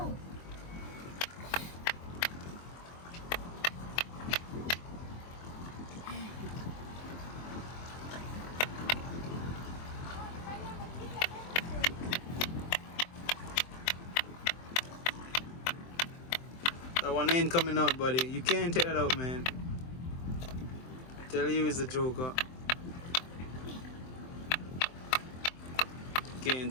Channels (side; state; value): right; late; 23 ms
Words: That one ain't coming out, buddy. You can't take that out, man. I tell you, it's a Joker. Can't